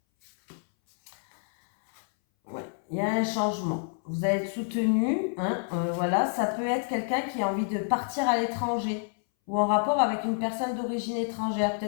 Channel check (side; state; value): right; silent; 59 dB below the other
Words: Ouais, il y a un changement. Vous allez être soutenu. Hein, voilà, ça peut être quelqu'un qui a envie de partir à l'étranger ou en rapport avec une personne d'origine étrangère.